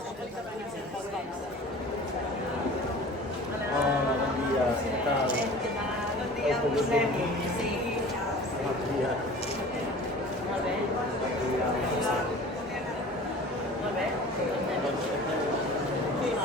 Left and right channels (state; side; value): normal; both; correlation 0.41